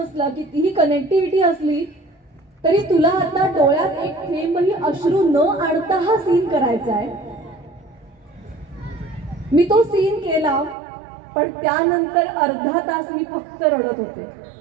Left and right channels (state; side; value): drops out; left; at 10.8 s